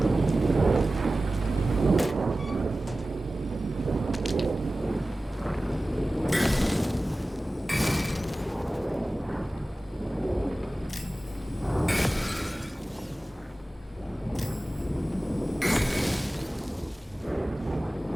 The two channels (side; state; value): both; normal; correlation 0.96